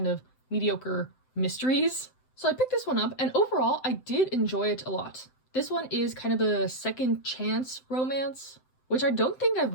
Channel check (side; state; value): right; late; 7.8 ms